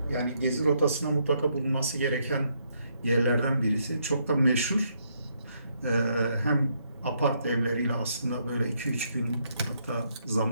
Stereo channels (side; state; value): both; inverted; correlation -0.74